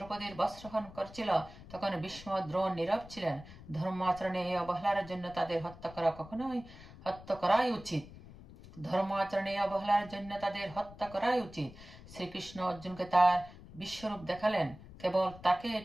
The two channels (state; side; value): noise; left; rumble, 18 dB below the sound